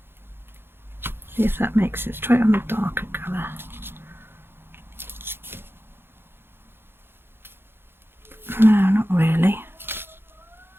See if that makes it. Let's try it on the darker colour. No, not really.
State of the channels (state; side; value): late; left; 0.11 ms